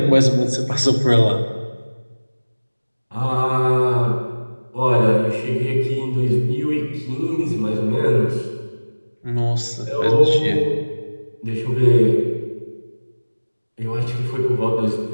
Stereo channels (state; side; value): inverted; both; correlation -1.00